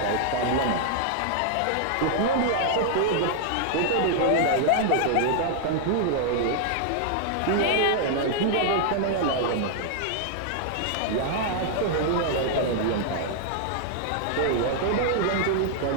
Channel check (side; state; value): both; different; correlation -0.01